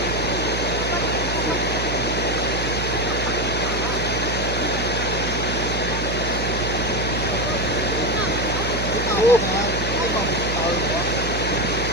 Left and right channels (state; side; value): noise; right; hum, 3 dB below the sound